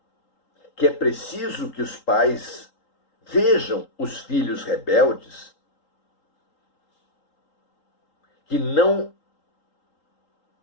que é preciso que os pais Vejam os filhos rebeldes que não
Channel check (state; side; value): late; right; 3.8 ms